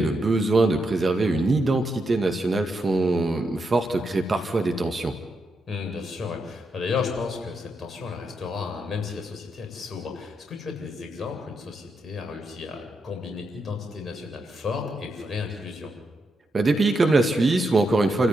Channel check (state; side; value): normal; both; correlation 0.83